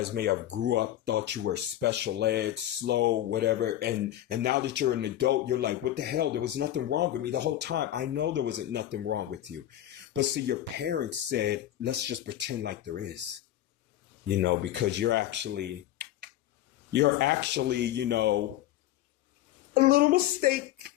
may have grew up, thought you were special ed, slow, whatever. And now that you're an adult, you're like, what the hell? There was nothing wrong with me the whole time. I know there wasn't nothing wrong with you. But see, your parents said, let's just pretend like there is, because you're actually, you know, a little mistake.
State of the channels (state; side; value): quieter; right; 12.9 dB